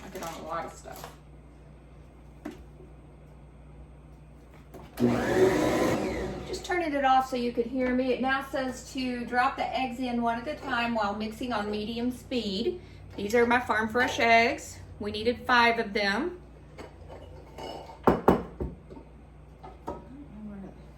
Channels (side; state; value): both; identical; correlation 1.00